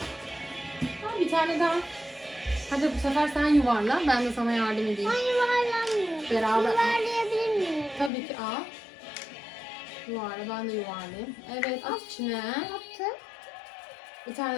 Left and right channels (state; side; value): drops out; right; at 8.1 s